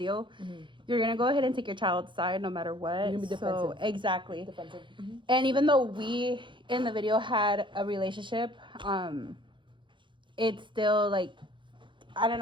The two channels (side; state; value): left; late; 0.23 ms